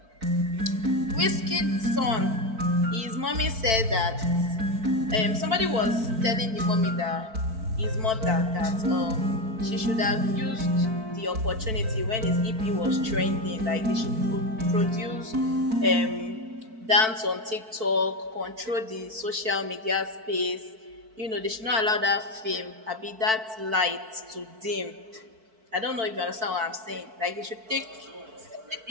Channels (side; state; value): left; late; 4.5 ms